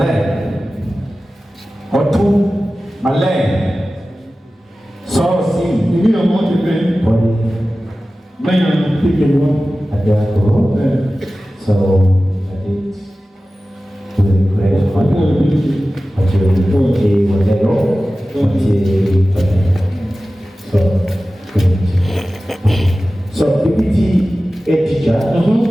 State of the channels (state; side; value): normal; both; correlation 0.96